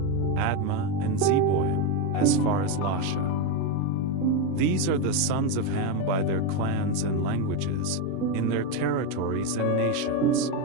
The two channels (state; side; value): different; both; correlation 0.05